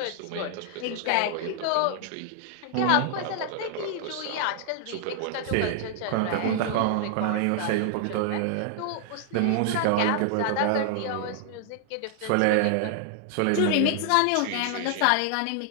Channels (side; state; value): both; different; correlation -0.01